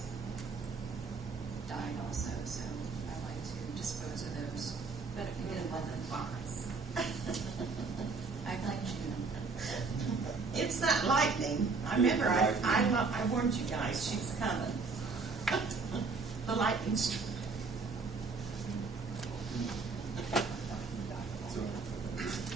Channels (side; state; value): left; quieter; 4.4 dB